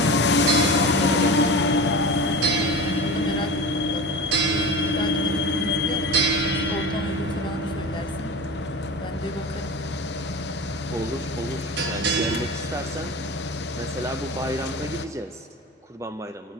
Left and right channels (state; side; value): normal; both; correlation 0.30